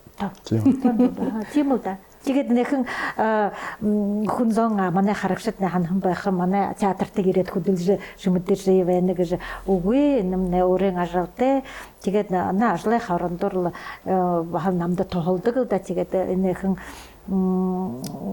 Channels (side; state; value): both; identical; correlation 1.00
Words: Тийм үү да. Тэгээд нэхэн хүн зон манай харагшид ханхан байх манай театртыг ирээд хөдөлж шүмэдэж байна гэж үгүй нэмнэ өөрийн ажалтай. Тэгээд наа ажлын хорондор бахал намда тоолдог да. Тэгээд нэхэн